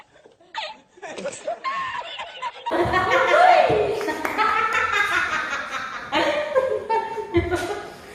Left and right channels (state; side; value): identical; both; correlation 1.00